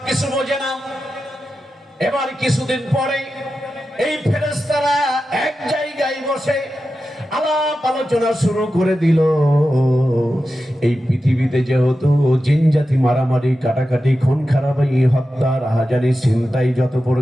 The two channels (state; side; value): normal; both; correlation 0.91